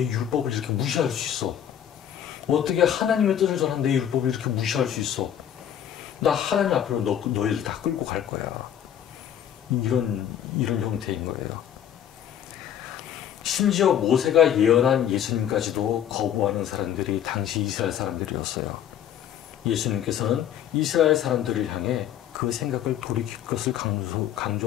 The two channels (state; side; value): quieter; right; 10.0 dB